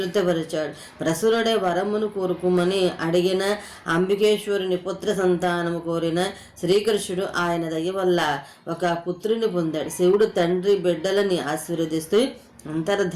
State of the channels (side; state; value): both; identical; correlation 1.00